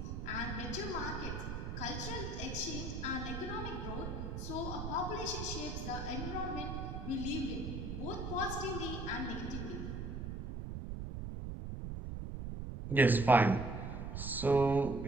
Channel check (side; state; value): right; noise; rumble, 5 dB below the sound